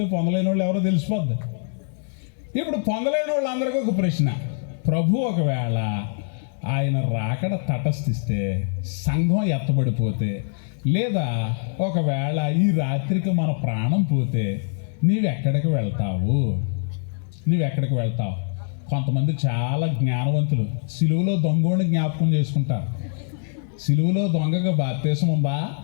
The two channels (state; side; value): silent; right; 63 dB below the other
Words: పొందలేని వాళ్ళు ఎవరో తెలిసిపోద్ది. ఇప్పుడు పొందలేని వాళ్ళందరికీ ఒక ప్రశ్న. ప్రభు ఒకవేళ ఆయన రాకడ తటస్థిస్తే, సంఘం ఎత్తబడిపోతే, లేదా ఒకవేళ ఈ రాత్రికి మన ప్రాణం పోతే నీవెక్కడికి వెళ్తావు? కొంతమంది చాలా జ్ఞానవంతులు సిలువలో దొంగోడిని జ్ఞాపకం చేసుకుంటారు. సిలువలో దొంగగా బాప్తీసం ఉందా?